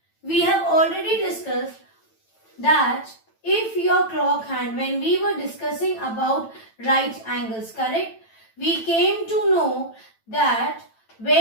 We have already discussed that if your clock hand, when we were discussing about right angles, correct, we came to know that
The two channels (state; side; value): late; right; 9.0 ms